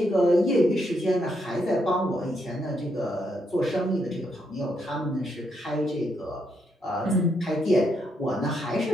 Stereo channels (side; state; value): both; normal; correlation 0.78